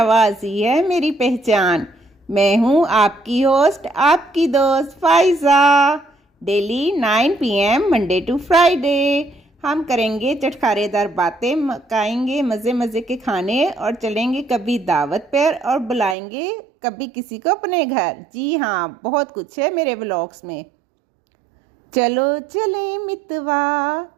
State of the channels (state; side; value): drops out; left; at 16.2 s